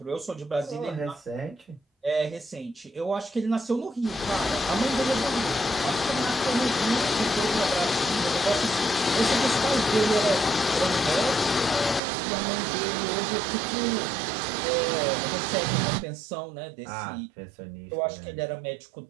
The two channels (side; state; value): left; drops out; at 12.0 s